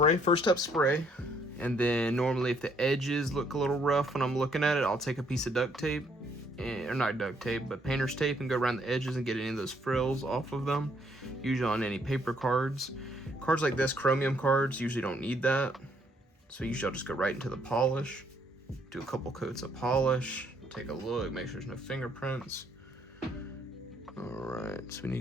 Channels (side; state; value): both; normal; correlation 0.68